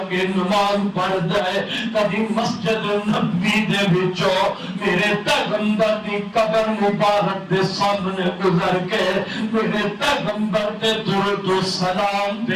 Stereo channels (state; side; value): identical; both; correlation 1.00